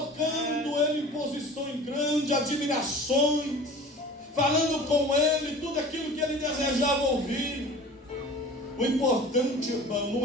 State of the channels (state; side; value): normal; both; correlation 0.41